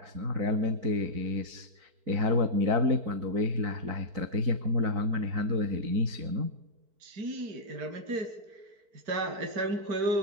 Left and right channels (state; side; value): late; left; 4.5 ms